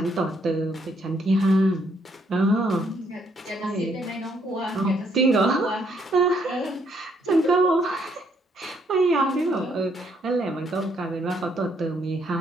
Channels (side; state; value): both; normal; correlation 0.70